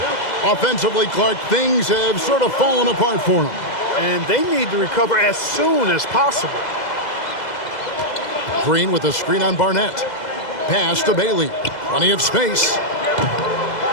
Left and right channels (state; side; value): late; right; 2.0 ms